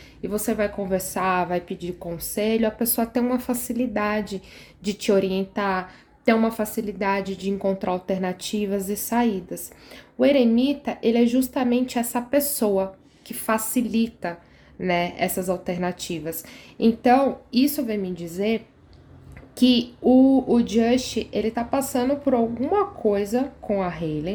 e você vai conversar, vai pedir conselho, a pessoa tem uma facilidade de te orientar, tem uma facilidade de encontrar alternativas e saídas. O eremita, ele é justamente essa pessoa que facilita, né, essas alternativas. Então, isso vem me dizer que o Just, ele tá passando por alguma coisa com a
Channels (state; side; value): identical; both; correlation 1.00